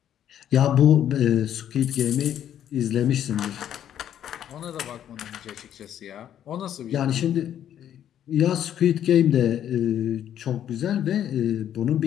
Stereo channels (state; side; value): quieter; right; 10.4 dB